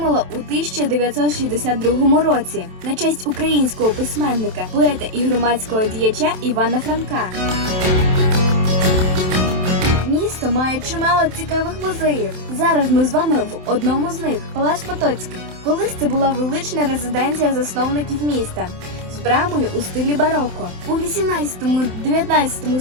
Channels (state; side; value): late; left; 27 ms